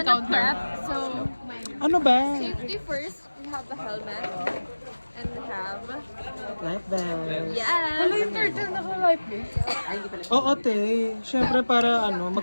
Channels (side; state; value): both; inverted; correlation -1.00